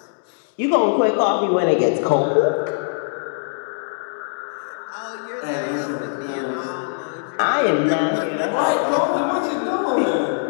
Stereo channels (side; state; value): right; silent; digital silence